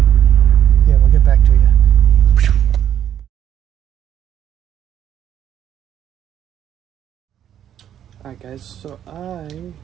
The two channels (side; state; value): left; quieter; 10.1 dB